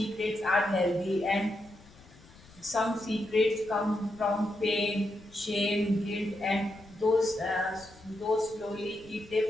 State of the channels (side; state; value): left; noise; rumble, 24 dB below the sound